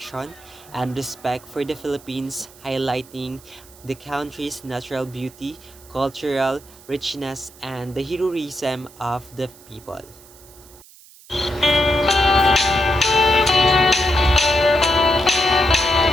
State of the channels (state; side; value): noise; right; hiss, 23 dB below the sound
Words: and respect for the Philippines, highlighting the country's natural beauty, cultural richness, and the heroism of the people.